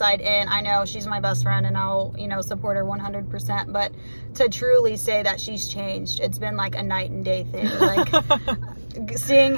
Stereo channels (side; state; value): both; inverted; correlation -1.00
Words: in, I know she's my best friend and I'll, you know, support her 100%, but to truly say that she's changed, it's been like a night and day thing. Like seeing